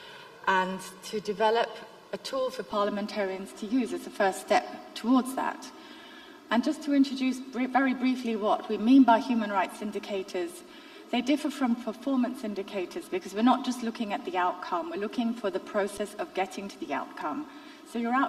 and to develop a tool for parliamentarians to use as a first step towards that. And just to introduce very briefly what we mean by human rights indicators, they differ from performance indicators because we're not just looking at the outcome, we're looking for the process of getting to the outcome. So your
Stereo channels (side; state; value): both; identical; correlation 1.00